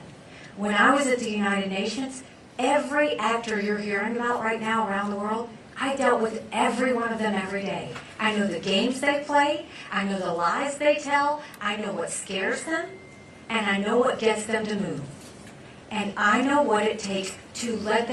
When I was at the United Nations, every actor you're hearing about right now around the world, I dealt with every one of them every day. I know the games they play. I know the lies they tell. I know what scares them. And I know what gets them to move. And I know what it takes to let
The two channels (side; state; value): both; identical; correlation 1.00